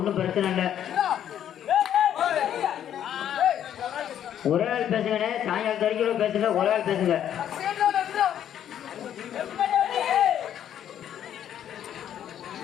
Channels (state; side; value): quieter; right; 10.2 dB